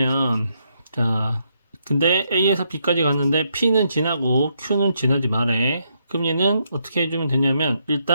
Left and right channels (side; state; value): both; inverted; correlation -0.77